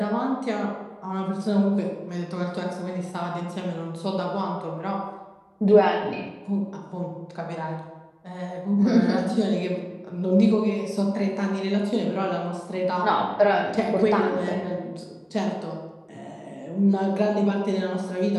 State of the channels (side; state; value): both; identical; correlation 1.00